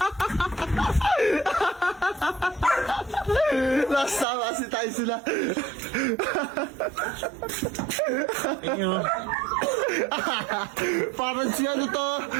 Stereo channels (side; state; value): left; drops out; at 4.2 s